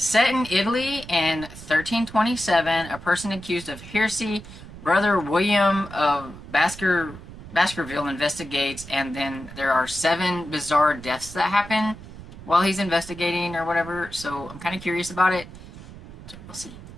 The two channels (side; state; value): right; noise; rumble, 15 dB below the sound